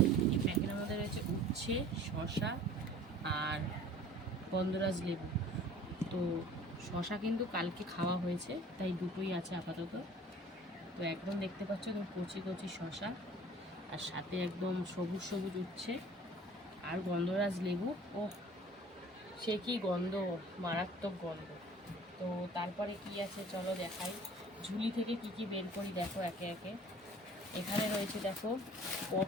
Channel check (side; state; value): both; normal; correlation 0.48